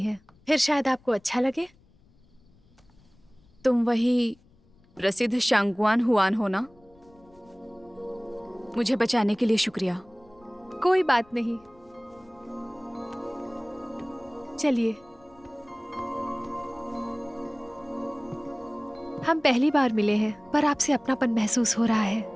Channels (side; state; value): left; noise; rumble, 30 dB below the sound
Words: फिर शायद आपको अच्छा लगे। तुम वही प्रसिद्ध शांगवान हुआन हो ना? मुझे बचाने के लिए शुक्रिया। कोई बात नहीं, चलिए। हम पहली बार मिले हैं, पर आपसे अपनापन महसूस हो रहा है।